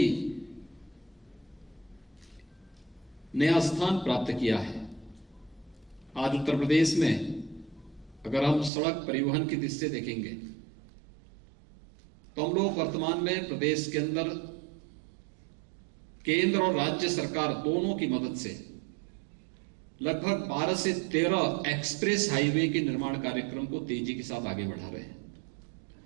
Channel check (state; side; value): drops out; left; at 8.7 s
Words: नया स्थान प्राप्त किया है। आज उत्तर प्रदेश में अगर हम सड़क परिवहन की दृष्टि से देखेंगे तो हम लोग वर्तमान में प्रदेश के अंदर केंद्र और राज्य सरकार दोनों की मदद से लगभग 12 से 13 एक्सप्रेस हाईवे के निर्माण कार्यक्रम को तेजी के साथ आगे बढ़ा रहे हैं।